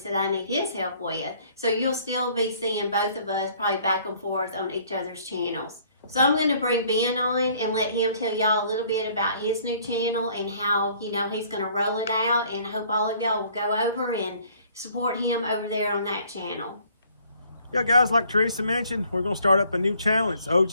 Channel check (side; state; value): both; inverted; correlation -0.59